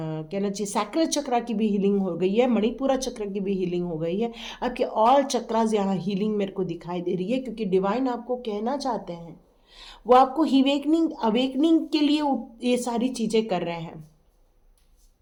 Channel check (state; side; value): identical; both; correlation 1.00